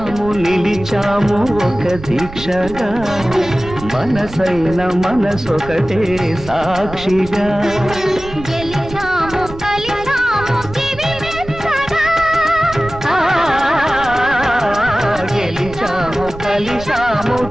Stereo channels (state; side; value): noise; right; rumble, 14 dB below the sound